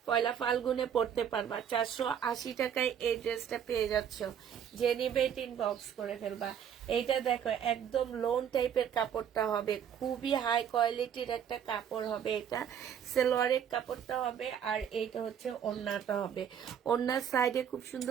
পয়লা ফাল্গুনে পড়তে পারবা। 480 টাকায় এই ড্রেসটা পেয়ে যাচ্ছ। যে নিবে এটা ইনবক্স করে ফেলবা। এইটা দেখো, একদম লোন টাইপের কাপড়টা হবে, খুবই হাই কোয়ালিটির একটা কাপড় হবে। এটা সালোয়ারের কাপড়টা হবে, আর এইটা হচ্ছে ওড়নাটা হবে। ওড়নার সাইডে খুব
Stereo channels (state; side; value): quieter; left; 8.6 dB